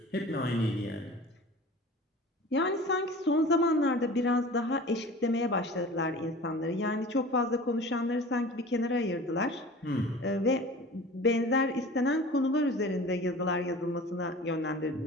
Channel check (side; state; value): both; normal; correlation 0.40